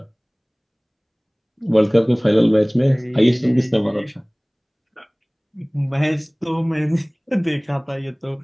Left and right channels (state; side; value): identical; both; correlation 1.00